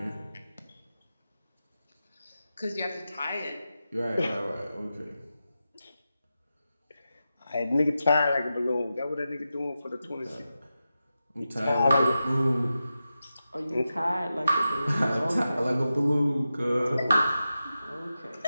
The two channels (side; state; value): both; inverted; correlation -0.91